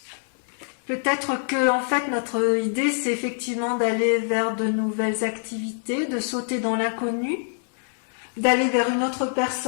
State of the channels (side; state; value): right; silent; 62 dB below the other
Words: Peut-être que, en fait, notre idée, c'est effectivement d'aller vers de nouvelles activités, de sauter dans l'inconnu, d'aller vers une autre